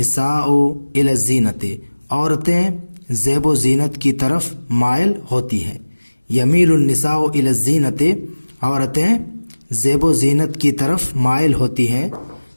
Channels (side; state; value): both; inverted; correlation -1.00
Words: الی الزینۃ، عورتیں زیب و زینت کی طرف مائل ہوتی ہیں۔ یمیل النساء الی الزینۃ، عورتیں زیب و زینت کی طرف مائل ہوتی ہیں۔